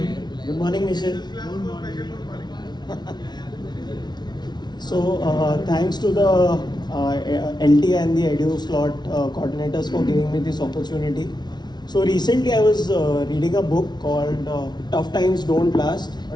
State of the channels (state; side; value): late; right; 0.20 ms